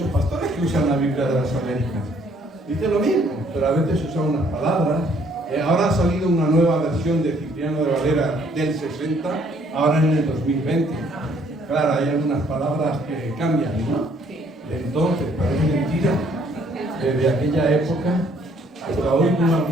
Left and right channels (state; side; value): normal; both; correlation 0.64